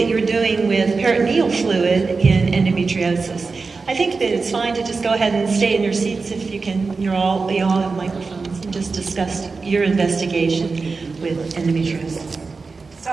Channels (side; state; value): left; quieter; 4.3 dB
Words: you're doing with peritoneal fluid in endometriosis. I think that it's fine to just go ahead and stay in your seats if you can. You all have microphones, and just discuss your investigation with endometriosis. So